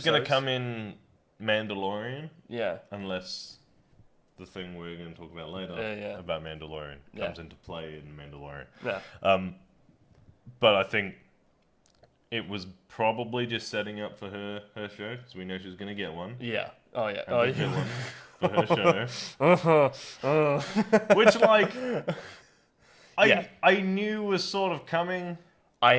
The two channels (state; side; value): identical; both; correlation 1.00